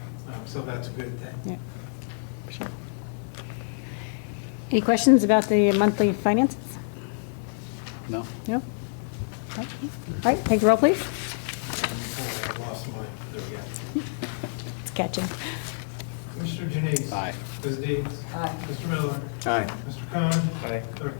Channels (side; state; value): right; silent; digital silence